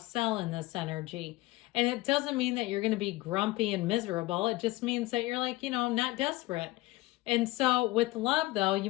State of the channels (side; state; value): right; quieter; 19.8 dB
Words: sell in this energy. And it doesn't mean that you're going to be grumpy and miserable. It just means that you're like, you know, not desperate. And so with love, though, you